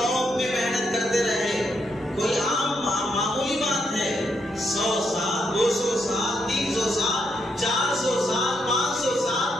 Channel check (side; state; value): right; noise; rumble, 30 dB below the sound